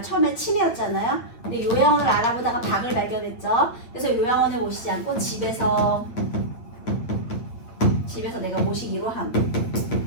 처음에 치매였잖아요. 근데 요양원을 알아보다가 박을 발견했죠. 그래서 요양원에 모시지 않고 집에서 내가 모시기로 함.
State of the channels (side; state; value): right; late; 8.8 ms